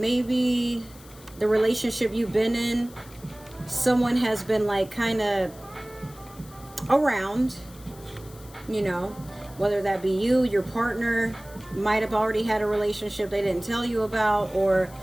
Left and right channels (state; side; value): noise; left; hiss, 22 dB below the sound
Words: the relationship you've been in, someone has been like kind of around, you know, whether that be you, your partner might have already had a relationship they didn't tell you about, or